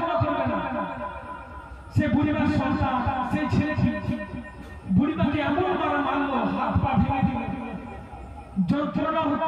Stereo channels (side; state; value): both; identical; correlation 1.00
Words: করবে না? সে বুড়িমার সন্তান, সেই ছেলেটি বুড়িমাকে এমন মারা মারলো, হাত পা ভেঙে দিল, যন্ত্রণা